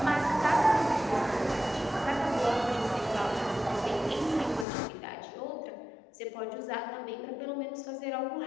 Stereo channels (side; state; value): right; drops out; at 4.7 s